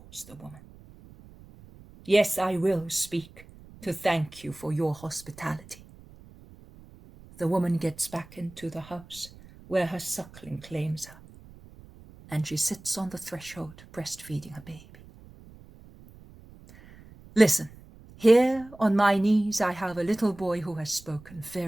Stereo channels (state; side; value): noise; right; rumble, 21 dB below the sound